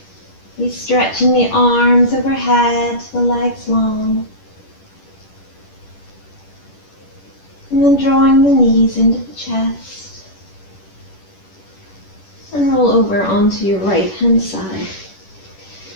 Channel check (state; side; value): late; right; 10 ms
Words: Be stretching the arms overhead, the legs long. And then drawing the knees into the chest. And roll over onto your right hand side.